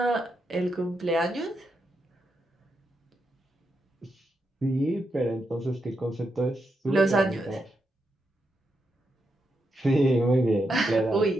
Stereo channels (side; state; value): both; normal; correlation 0.83